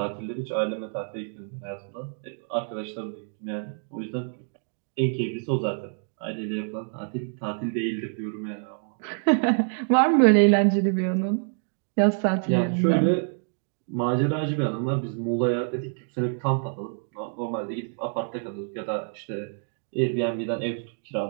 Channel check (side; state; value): left; silent; 59 dB below the other